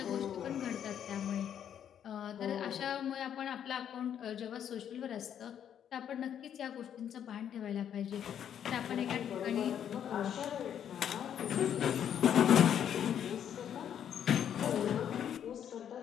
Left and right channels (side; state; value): right; quieter; 9.2 dB